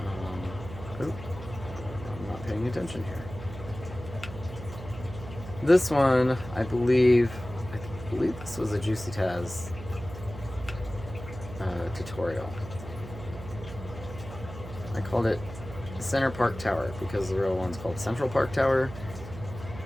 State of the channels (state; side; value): noise; right; hum, 12 dB below the sound